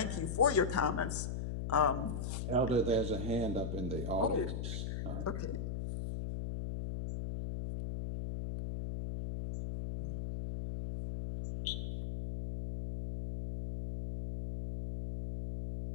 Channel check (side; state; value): left; noise; hum, 3 dB below the sound